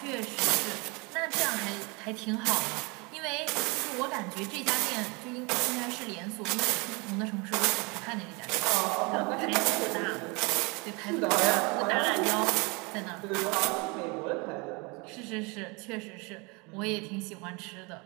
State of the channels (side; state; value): left; quieter; 28.6 dB